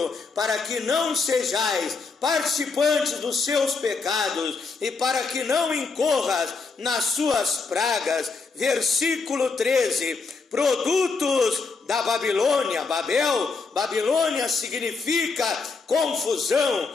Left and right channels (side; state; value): right; quieter; 4.5 dB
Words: para que não sejais participantes dos seus pecados, e para que não incorras nas suas pragas. Versículo 13. Produtos da Babilônia. Babilônia significa confusão,